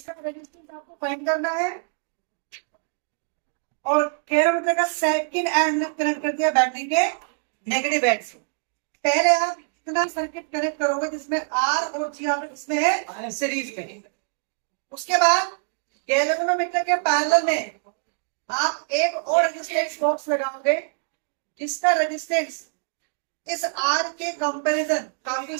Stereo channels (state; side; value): silent; left; digital silence